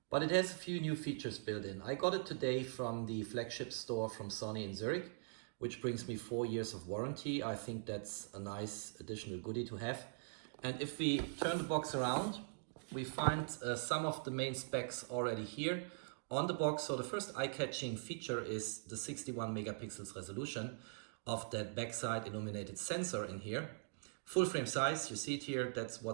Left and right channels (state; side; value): silent; left; digital silence